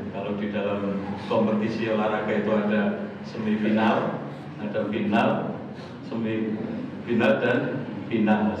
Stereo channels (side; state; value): both; identical; correlation 1.00